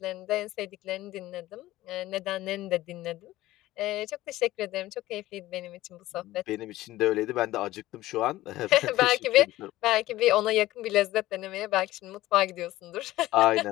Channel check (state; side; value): quieter; right; 16.4 dB